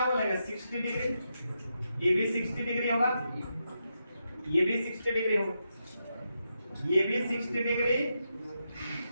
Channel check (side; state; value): both; inverted; correlation -0.85